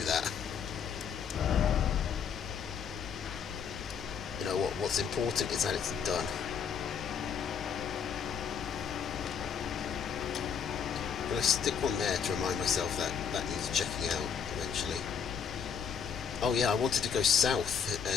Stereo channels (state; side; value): quieter; right; 7.0 dB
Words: that. You know what? What's important is that it's done. I'm going to stick one there to remind myself that that needs checking out eventually. Oh yeah, I wanted to go south,